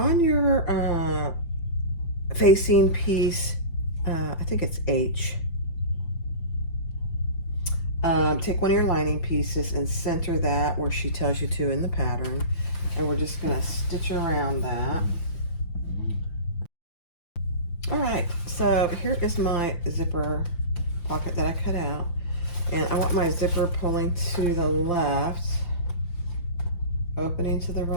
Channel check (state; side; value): late; right; 5.8 ms